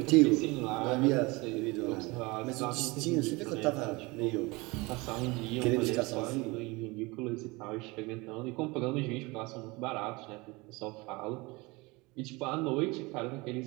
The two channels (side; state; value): left; quieter; 24.3 dB